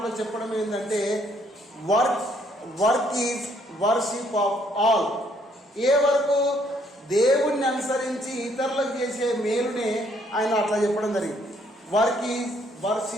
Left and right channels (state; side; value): normal; both; correlation 0.68